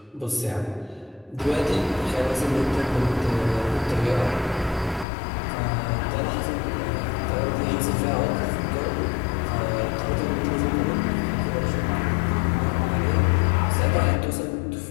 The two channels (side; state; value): right; drops out; at 5.1 s